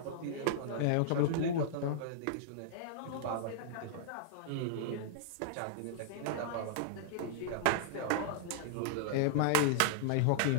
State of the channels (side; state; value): both; different; correlation -0.01